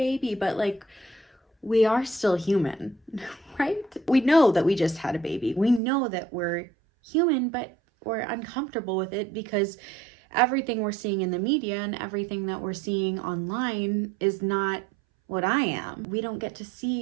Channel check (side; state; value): left; drops out; at 5.8 s